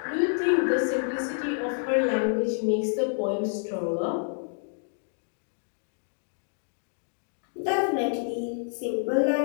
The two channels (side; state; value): right; silent; digital silence